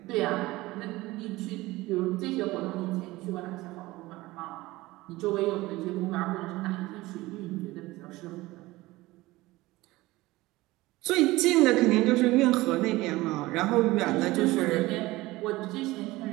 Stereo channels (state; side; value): quieter; left; 19.3 dB